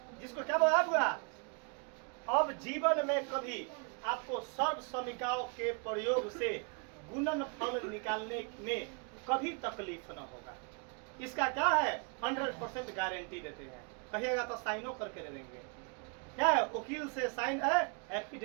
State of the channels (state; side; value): quieter; left; 35.2 dB